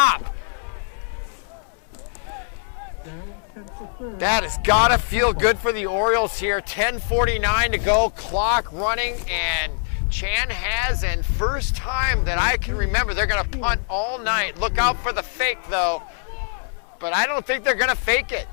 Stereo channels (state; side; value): silent; right; 63 dB below the other